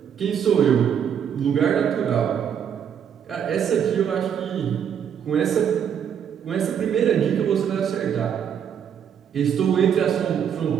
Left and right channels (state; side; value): quieter; left; 8.4 dB